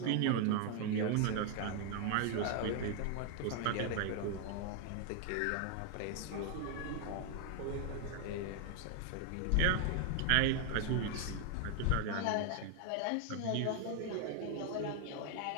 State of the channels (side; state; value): both; different; correlation 0.00